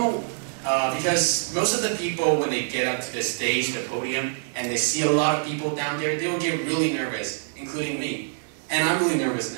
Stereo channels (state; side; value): silent; left; digital silence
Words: most of the people, when they get up to the stage, the podium, and they see a lot of people down there, they will get really nervous, including me. And I'm really nervous